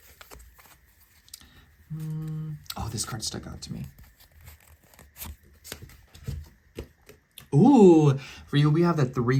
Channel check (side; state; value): both; identical; correlation 1.00